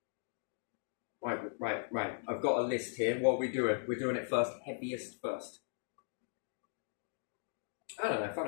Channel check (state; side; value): silent; right; digital silence